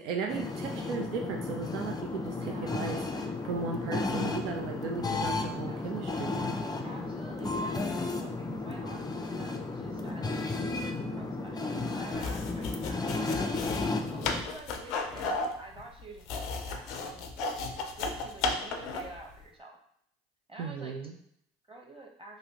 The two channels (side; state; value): both; normal; correlation 0.50